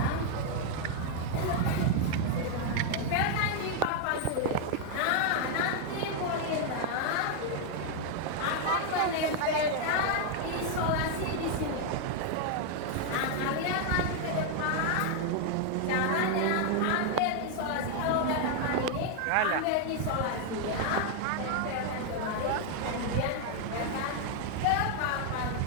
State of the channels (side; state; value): both; different; correlation 0.00